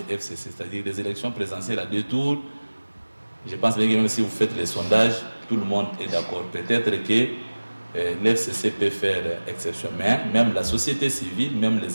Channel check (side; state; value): both; inverted; correlation -1.00